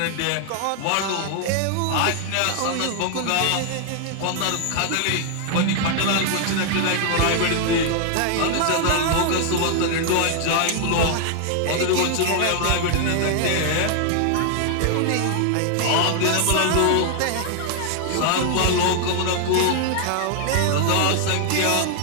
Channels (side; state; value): both; different; correlation 0.00